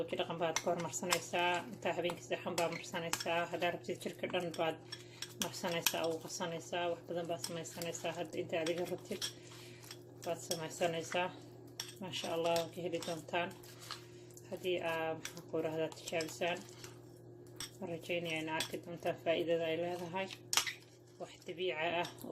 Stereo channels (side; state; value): both; identical; correlation 1.00